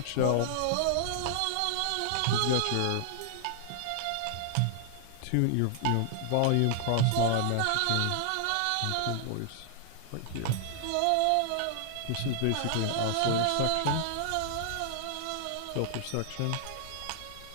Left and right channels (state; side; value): different; both; correlation -0.01